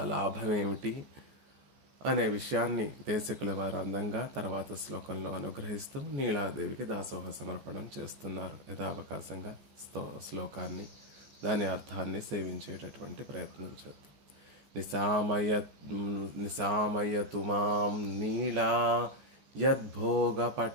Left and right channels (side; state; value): left; late; 14 ms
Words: లాభం ఏమిటి అనే విషయాన్ని దేశకుల వారు అందంగా తర్వాత శ్లోకంలో అనుగ్రహిస్తూ నీలాదేవికి దాసోహ సమర్పణం చేస్తున్నారు. యథావకాశంగా శ్లోకాన్ని, దాని అర్థాన్ని సేవించేటటువంటి ప్రయత్నం చేద్దాం. నిశామయతు మాం నీలా